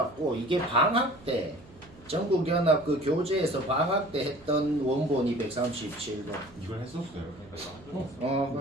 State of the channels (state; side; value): noise; right; hum, 23 dB below the sound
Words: 이게 방학 때 전국연합 그 교재에서 방학 때 했던 원본이 137번. 이걸 했었어요.